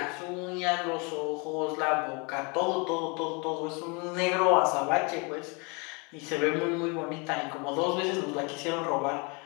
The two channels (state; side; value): quieter; right; 31.3 dB